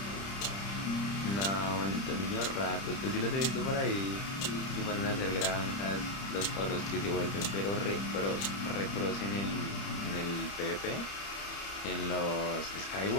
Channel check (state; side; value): late; right; 30 ms